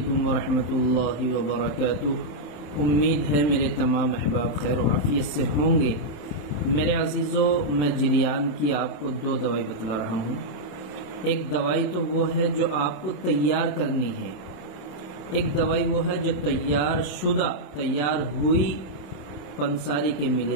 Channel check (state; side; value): late; right; 27 ms